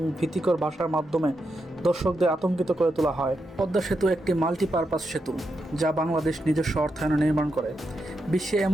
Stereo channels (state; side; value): normal; both; correlation 0.85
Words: ভীতিকর ভাষার মাধ্যমে দর্শকদের আতঙ্কিত করে তোলা হয়। পদ্মা সেতু একটি মাল্টিপারপাস সেতু, যা বাংলাদেশ নিজস্ব অর্থায়নে নির্মাণ করে। বিশ্বে